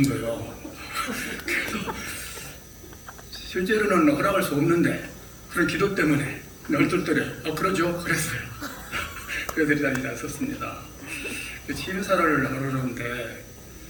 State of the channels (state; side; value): identical; both; correlation 1.00